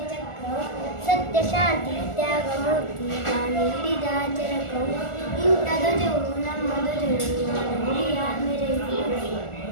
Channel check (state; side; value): late; right; 1.4 ms